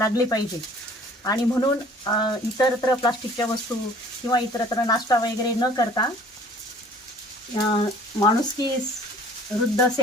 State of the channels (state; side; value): normal; both; correlation 0.51